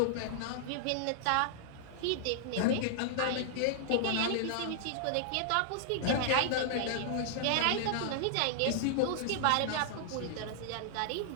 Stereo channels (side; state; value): both; different; correlation -0.01